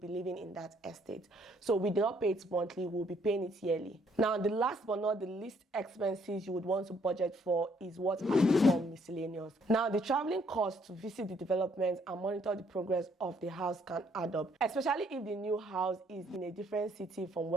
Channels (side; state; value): both; normal; correlation 0.67